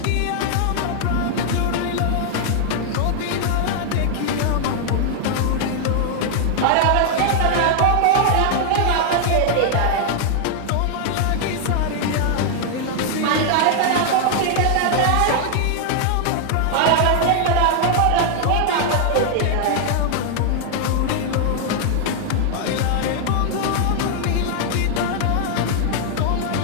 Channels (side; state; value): both; different; correlation 0.00